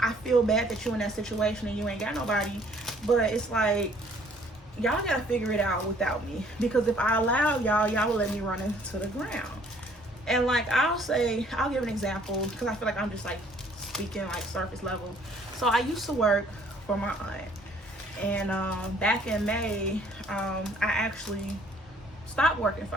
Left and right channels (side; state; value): both; normal; correlation 0.60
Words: feel bad that you in that situation and you ain't got nobody. But it's like, y'all gotta figure it out without me, because if I allow y'all will let me run into the ground. And like, I'll give an example, because I feel like I'm just like speaking like surface level. So I used to work for my aunt, and back in May, I actually stopped working